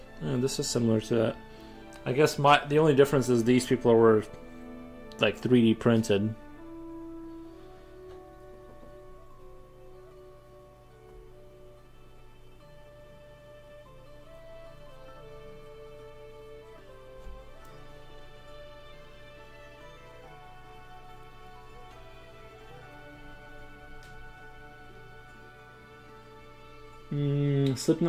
This is similar to that. I guess the only difference is these people were like 3D printed.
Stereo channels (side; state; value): both; identical; correlation 1.00